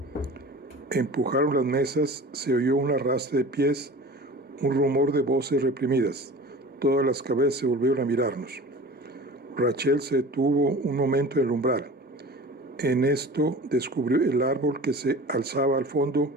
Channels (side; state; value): both; normal; correlation 0.38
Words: Empujaron las mesas, se oyó un arrastre de pies, un rumor de voces reprimidas. Todas las cabezas se volvieron a mirarnos. Rachel se detuvo un momento en el umbral. En esto descubrió el árbol que se alzaba al fondo